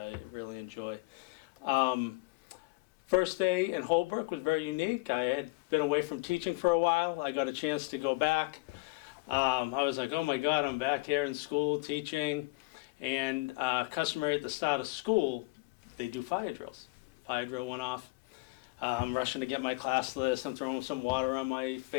really enjoy. First day in Holbrook was very unique. I had been away from teaching for a while. I got a chance to go back. I was like, oh my God, I'm back here in school teaching. And customary at the start of school, they do fire drills. Fire drill went off. I'm rushing to get my class list. I'm throwing some water on my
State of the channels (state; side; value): quieter; right; 24.9 dB